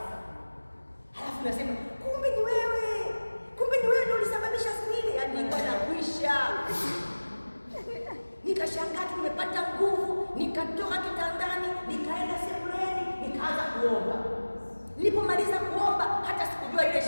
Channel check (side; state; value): both; inverted; correlation -1.00